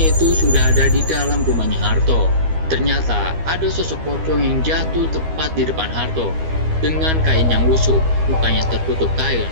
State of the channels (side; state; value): left; late; 12 ms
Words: itu sudah ada di dalam rumahnya Harto. Ternyata ada sosok pocong yang jatuh tepat di depan Harto. Dengan kain yang lusuh, mukanya tertutup kain,